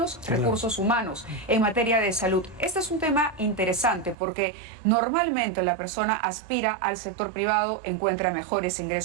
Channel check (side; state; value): left; drops out; at 4.2 s